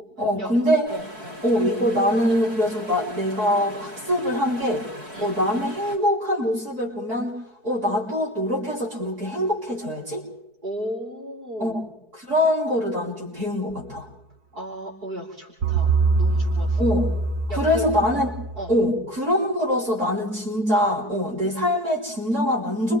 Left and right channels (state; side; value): late; left; 4.6 ms